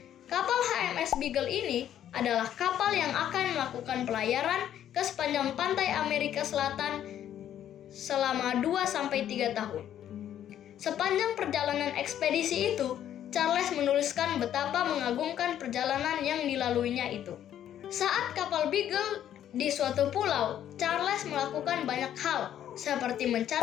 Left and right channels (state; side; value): quieter; right; 10.8 dB